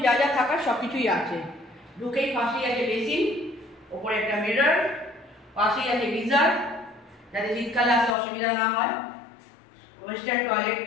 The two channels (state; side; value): drops out; right; at 8.2 s